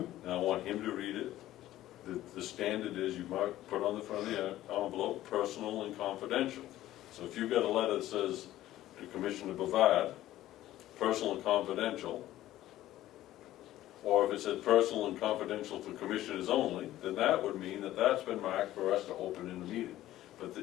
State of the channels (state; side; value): quieter; right; 14.4 dB